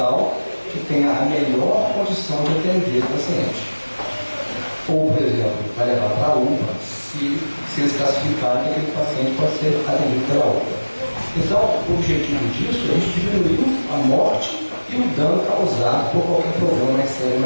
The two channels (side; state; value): both; inverted; correlation -1.00